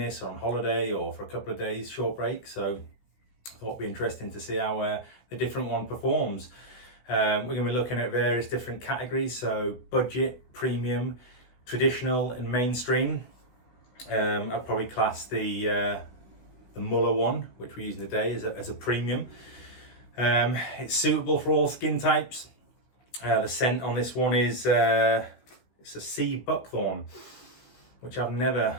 on holiday, or for a couple of days, short break. So I thought it'd be interesting to see how the different one performs. We're going to be looking at various different categories, so budget, premium, traditional and mainstream. I'd probably class the Mülhe one, which we're using today, as a premium. It's suitable for all skin types. The scent on this one is it's a sea Buckthorn, which I've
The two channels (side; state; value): right; late; 16 ms